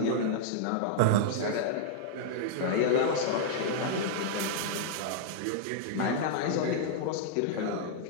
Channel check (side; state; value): both; different; correlation -0.01